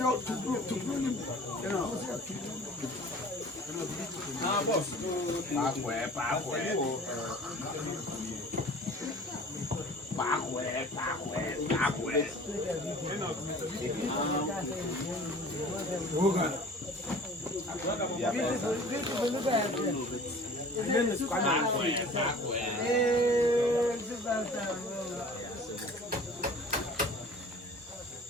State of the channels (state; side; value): normal; both; correlation 0.45